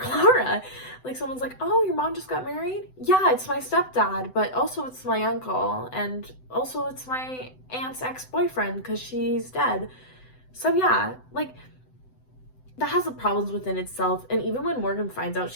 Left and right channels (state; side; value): late; right; 7.9 ms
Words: Like, someone's like, oh, your mom just got married? Yeah, it's my stepdad, but also it's my uncle, and also it's my aunt's ex-boyfriend because she's dead. So yeah, like, that has the problems within itself. And even when Morgan finds out